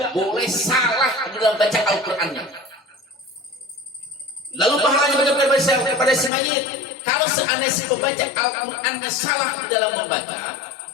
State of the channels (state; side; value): drops out; right; at 6.3 s